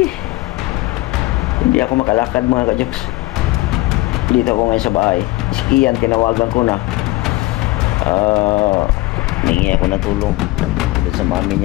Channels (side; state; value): right; quieter; 19.9 dB